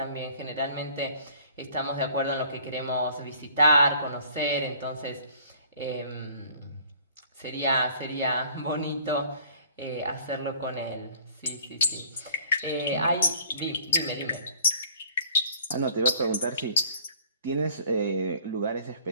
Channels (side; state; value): both; inverted; correlation -0.54